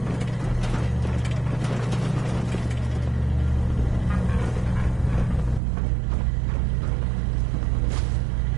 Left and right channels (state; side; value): drops out; left; at 5.6 s